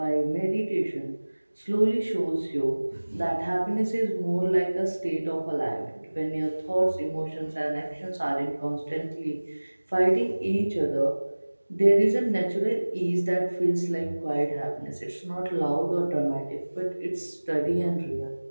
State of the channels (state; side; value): inverted; both; correlation -1.00